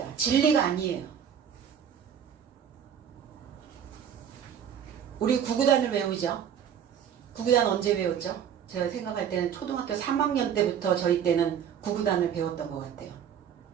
진리가 아니에요. 우리 구구단을 외우죠. 구구단 언제 외웠죠? 제가 생각할 때는 초등학교 3학년 때부터 저희 때는 구구단을 배웠던 것 같아요.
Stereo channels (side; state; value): left; quieter; 8.5 dB